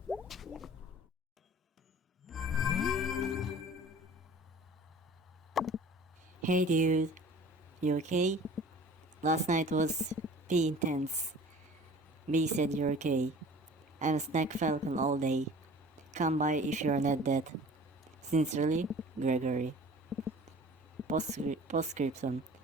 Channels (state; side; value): normal; both; correlation 0.46